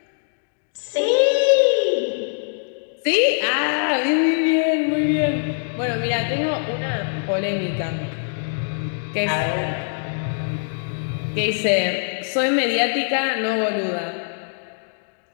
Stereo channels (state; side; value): silent; right; digital silence